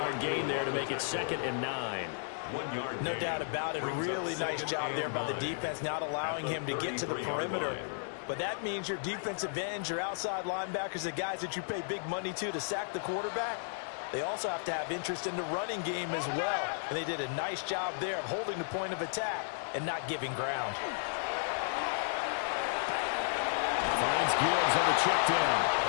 gain there to make it 2nd and 9. No doubt about it. Really nice job there by the defense, not allowing him to get to the perimeter. But that means your defensive ends, your outside linebackers, the guys that you pay big money to sack the quarterback, they also have to have interest in the running game as well. And they did a nice job there of holding the point of attack and not giving ground. Finds Gibbs on the check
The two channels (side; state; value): right; silent; digital silence